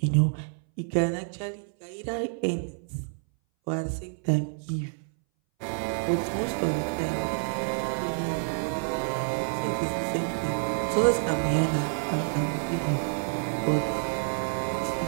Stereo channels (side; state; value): left; silent; 59 dB below the other